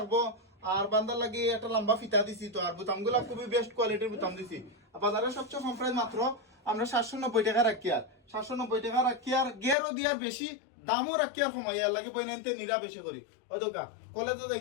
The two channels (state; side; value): drops out; right; at 9.8 s